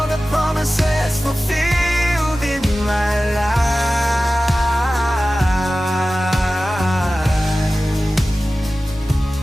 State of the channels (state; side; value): normal; both; correlation 0.96